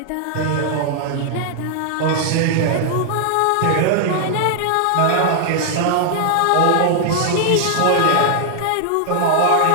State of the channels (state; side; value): different; both; correlation 0.00